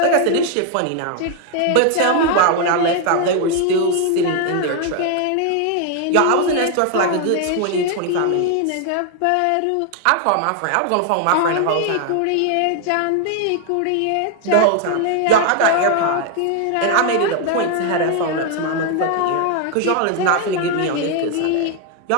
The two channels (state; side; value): different; both; correlation 0.00